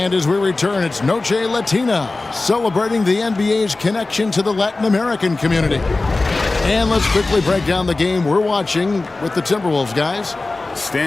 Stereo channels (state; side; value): quieter; right; 3.3 dB